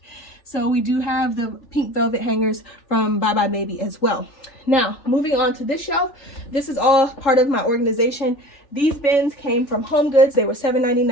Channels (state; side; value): late; right; 3.4 ms